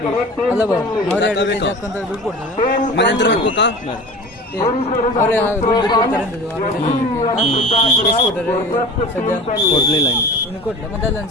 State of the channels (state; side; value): normal; both; correlation 0.37